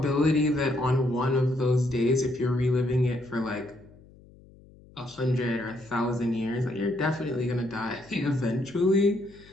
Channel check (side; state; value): left; noise; hum, 24 dB below the sound